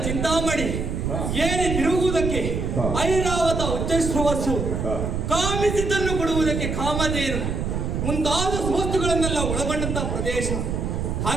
ಚಿಂತಾಮಣಿ ಏರಿ ತಿರುಗುವುದಕ್ಕೆ ಐರಾವತ ಉಚ್ಚಶ್ರವಸ್ಸು, ಕಾಮಿಸಿದ್ದನ್ನು ಕೊಡುವುದಕ್ಕೆ ಕಾಮಧೇನು ಮುಂತಾದ ವಸ್ತುಗಳನ್ನೆಲ್ಲ ಒಳಗೊಂಡಂತಹ ಪ್ರದೇಶ.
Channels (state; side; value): noise; right; rumble, 2 dB below the sound